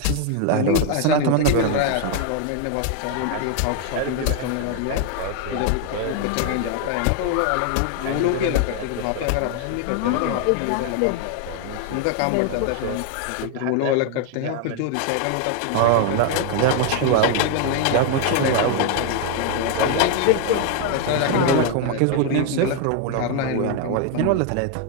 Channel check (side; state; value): both; different; correlation 0.01